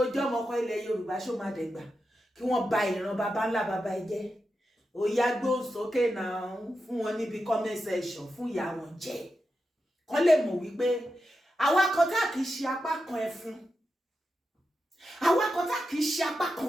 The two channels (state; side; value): normal; both; correlation 0.89